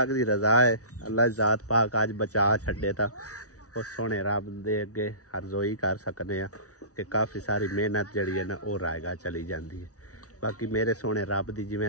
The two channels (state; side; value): late; right; 0.67 ms